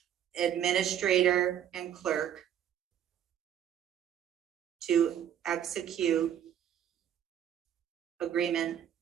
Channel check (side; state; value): left; quieter; 9.9 dB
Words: administrator and clerk to execute agreement